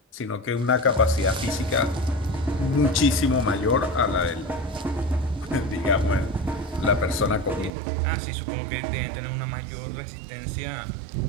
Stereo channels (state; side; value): drops out; left; at 7.7 s